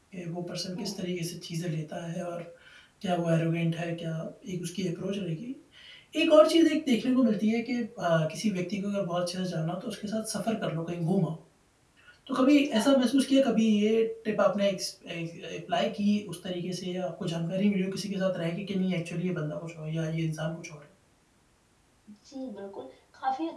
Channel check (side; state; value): both; identical; correlation 1.00